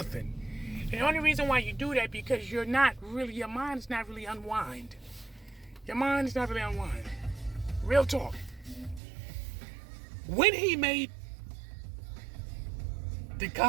And the only reason why you do that because your mind is not really unwind. Your mind is not really unwind. Real talk. When he made the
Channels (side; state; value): left; drops out; at 9.0 s